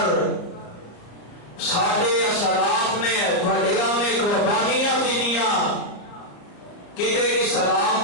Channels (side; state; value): right; late; 34 ms